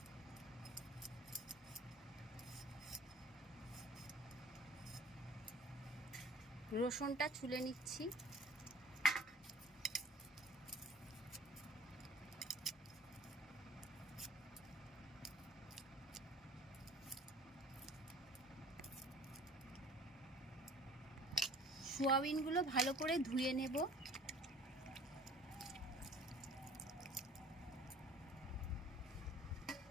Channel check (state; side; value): normal; both; correlation 0.48